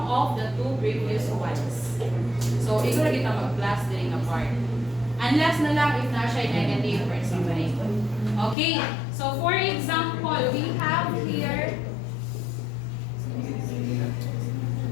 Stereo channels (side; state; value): right; drops out; at 8.6 s